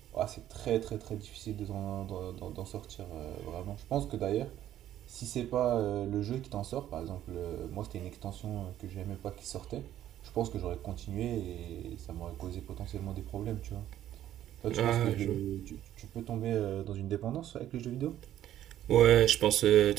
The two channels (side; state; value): left; quieter; 12.0 dB